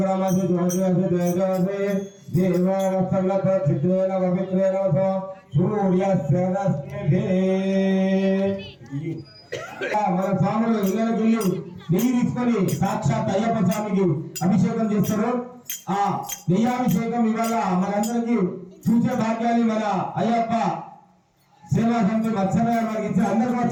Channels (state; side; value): identical; both; correlation 1.00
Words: जोजसि तेजसि దేవవత్సలత చిత్రేణ పవిత్రేణ సూర్యస్య రశ్మిభిః. మన స్వాములు ఇళ్ళకి నెయ్యి తీసుకొని సాక్షాత్ అయ్యప్ప స్వామికి అభిషేకం చేస్తారు. ఆ నెయ్యాభిషేకం ఇవాళ మనందరికీ చూసే భాగ్యాన్ని మన అయ్యప్ప సేవా సమితి మత్సరగా మనకి ఇచ్చి అందరూ